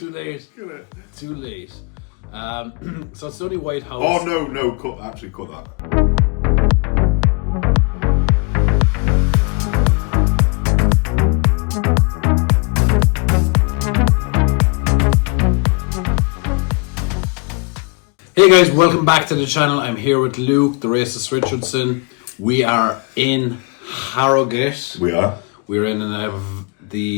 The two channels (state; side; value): quieter; right; 31.9 dB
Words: late. Cut it. Too late. So it's the only White House. Oh no! Cut that. Hey guys, welcome back to the channel. I'm here with Luke, the racist Richardson. We are in Harrogate. We are. We're in